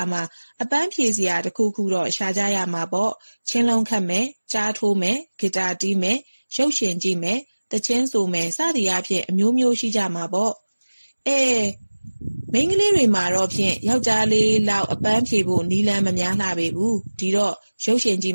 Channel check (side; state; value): both; inverted; correlation -1.00